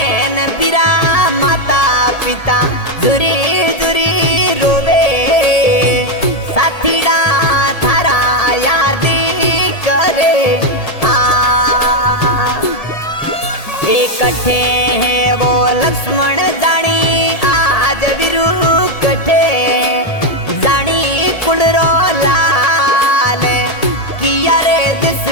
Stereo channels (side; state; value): right; late; 1.7 ms